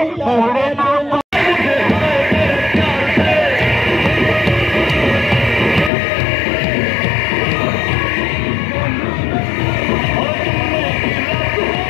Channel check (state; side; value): drops out; right; at 5.9 s